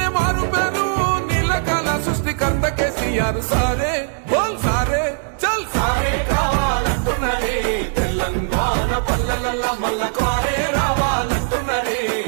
మారు పేరు, నీళ్ళకాల సృష్టికర్త కేసీఆర్. సారే బోల్ సారే చల్ సారే కావాలంటున్నదే తెలంగాణ పల్లెలల్లా, మల్ల కారే రావాలంటున్నదే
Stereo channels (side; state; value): left; silent; digital silence